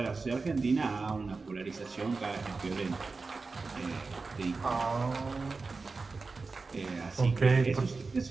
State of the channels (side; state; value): left; quieter; 4.1 dB